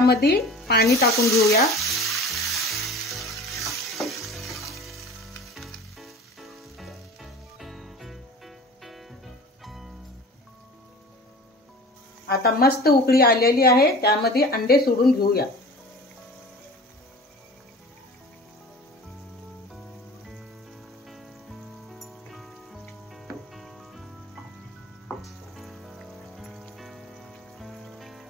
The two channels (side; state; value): both; normal; correlation 0.40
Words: पाणी टाकून घेऊया। आता मस्त उकळी आलेली आहे, त्यामध्ये अंडे सोडून घेऊया।